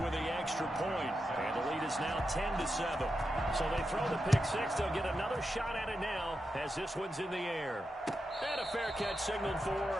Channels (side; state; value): both; normal; correlation 0.88